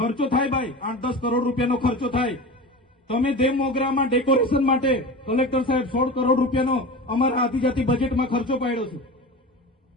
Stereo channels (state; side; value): normal; both; correlation 0.30